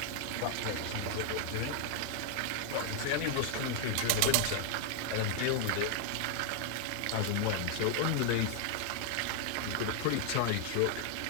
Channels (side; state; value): both; different; correlation 0.00